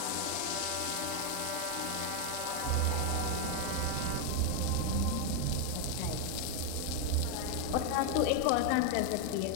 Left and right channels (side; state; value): both; different; correlation 0.01